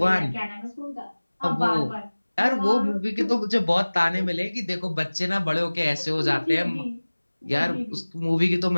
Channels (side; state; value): both; inverted; correlation -1.00